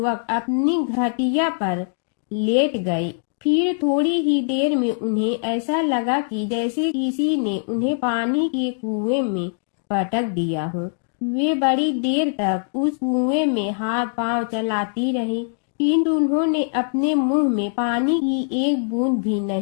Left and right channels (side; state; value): right; silent; digital silence